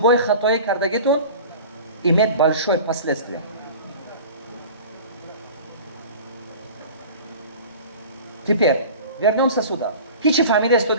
خطایی کردگیتون имеет большое последствие. Теперь вернемся сюда. Хичи фамилия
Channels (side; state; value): both; inverted; correlation -0.39